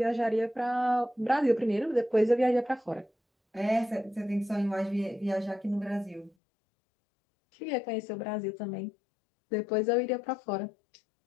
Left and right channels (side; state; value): right; drops out; at 6.3 s